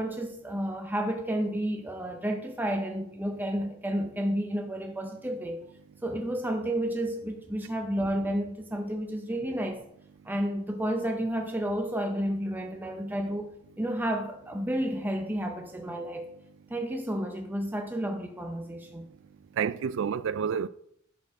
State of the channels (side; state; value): both; normal; correlation 0.73